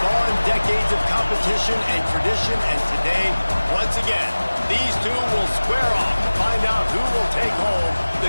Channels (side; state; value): both; inverted; correlation -1.00